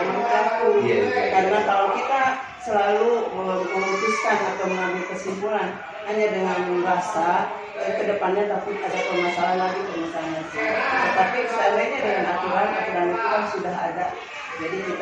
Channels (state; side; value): identical; both; correlation 1.00